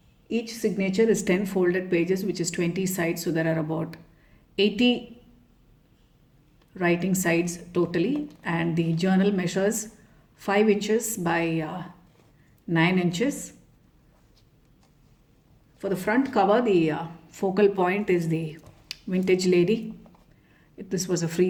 Each signature is 10 folded pages, which is 20 sides, so there are about 80 writing sides totally, and the journal measures 5 inches by 9 inches. For the front cover, the focal point is the vintage lady. This was a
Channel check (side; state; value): both; identical; correlation 1.00